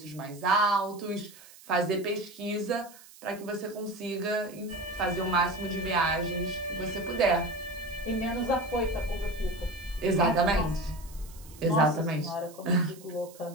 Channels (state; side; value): noise; right; hiss, 21 dB below the sound